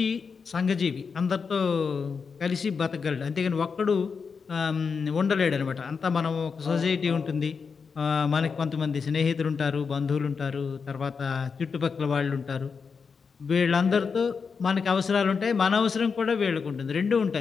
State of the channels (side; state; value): right; quieter; 5.5 dB